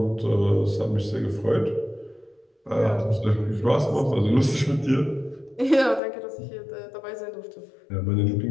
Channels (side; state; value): right; drops out; at 6.0 s